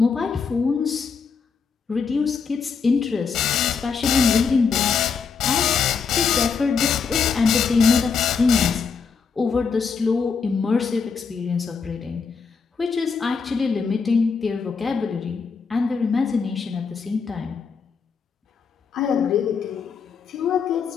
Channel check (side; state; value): right; quieter; 5.6 dB